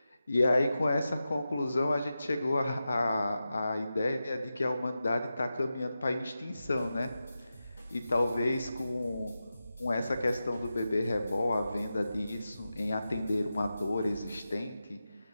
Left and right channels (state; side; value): inverted; both; correlation -0.92